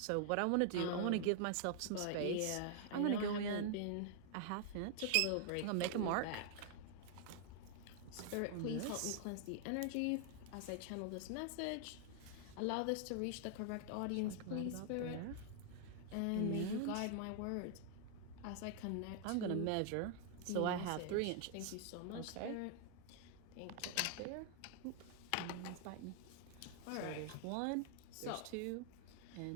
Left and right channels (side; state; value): both; different; correlation 0.00